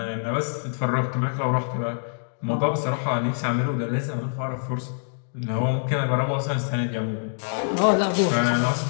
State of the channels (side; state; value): right; silent; digital silence